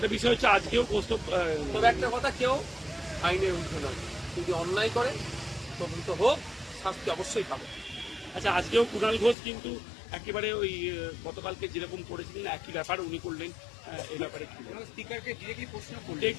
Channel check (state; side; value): drops out; right; at 9.3 s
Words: বিষয় হচ্ছে আজকেও কৌস্তব তবে একটা কথা, কেউ আইনের ঊর্ধ্বে নয়, যদি অন্যায় করে তদন্ত হোক, শাস্তি অবশ্যই পাবে। আচ্ছা, আজকেও কুণাল ঘোষ কিন্তু একেবারে ওই গতকালকে যেরকম করেছিলেন একই ব্যাপার উনি করলেন। এই ব্যাপারে কি স্পিকারকে ডিরেক্টলি প্রশ্ন করলেন?